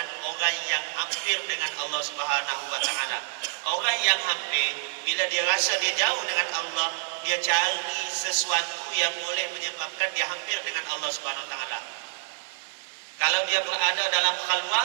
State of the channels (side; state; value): left; silent; 60 dB below the other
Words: orang yang hampir dengan Allah Subhanahu wa taala. Orang yang hampir, bila dia rasa dia jauh dengan Allah, dia cari sesuatu yang boleh menyebabkan dia hampir dengan Allah Subhanahu wa taala. Kalau dia berada dalam